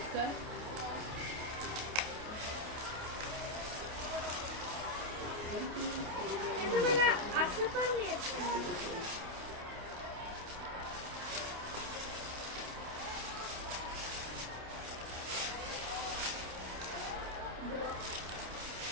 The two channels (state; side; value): late; left; 28 ms